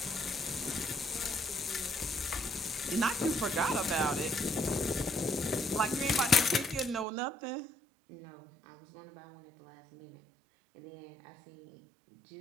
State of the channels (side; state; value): left; drops out; at 7.1 s